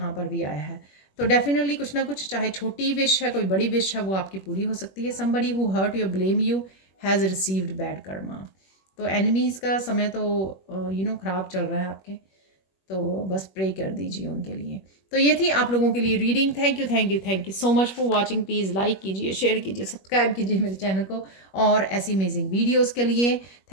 पर भी आया है। तो डेफिनेटली कुछ ना कुछ, चाहे छोटी विश है कोई बड़ी विश है, वो आपकी पूरी हो सकती है। Somebody who hurt you blame you has received bad karma. तो एनिमीज़ का समय तो ख़राब चल रहा है आपके, तो बस प्रे कर दीजिए उनके लिए। तो ये थी आप लोगों के लिए reading. Thank you so much for watching. Please like कीजिए, शेयर कीजिए, सब्सक्राइब कीजिए मेरे चैनल को और ऐसी अमेजिंग वीडियोस के लिए।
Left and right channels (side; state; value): right; late; 21 ms